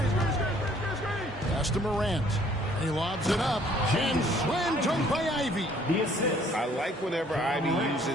Pass to Morant. He lobs it up. And slam dunk by Ivy. I like whenever Ivy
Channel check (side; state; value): both; normal; correlation 0.60